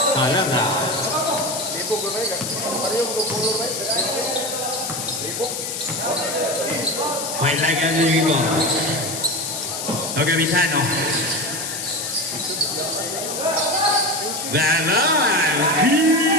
Salanda. Point like a river. Okay, Vitano. Bye-bye.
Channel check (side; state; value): left; noise; hiss, 5 dB below the sound